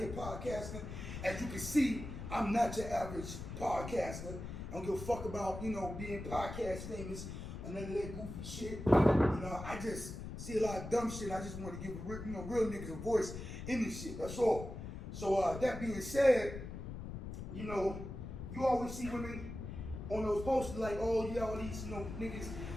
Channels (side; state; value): left; noise; rumble, 8 dB below the sound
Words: podcasting. As you can see, I'm not your average podcaster. I don't give a fuck about, being podcast famous or none of that goofy shit. I just see a lot of dumb shit. I just want to give real niggas a voice in this shit. That's all. So that being said, you always see women on those posters like, oh yeah, all these niggas